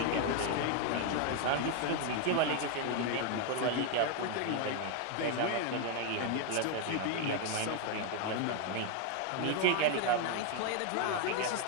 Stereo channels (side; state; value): both; different; correlation 0.01